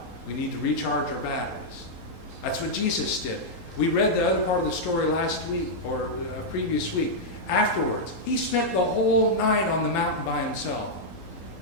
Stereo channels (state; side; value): late; right; 3.8 ms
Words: We need to recharge our batteries. That's what Jesus did. We read the other part of the story last week, or previous week. Afterwards, he spent the whole night on the mountain by himself